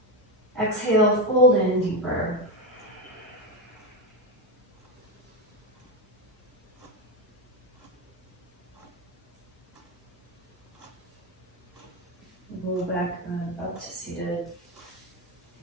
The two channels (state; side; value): normal; both; correlation 0.12